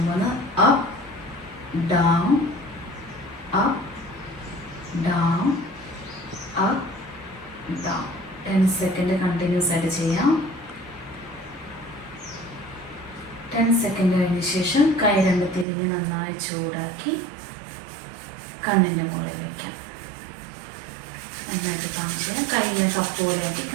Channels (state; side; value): drops out; left; at 15.7 s